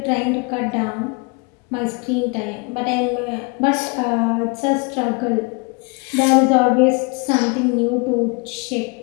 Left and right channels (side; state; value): right; quieter; 31.1 dB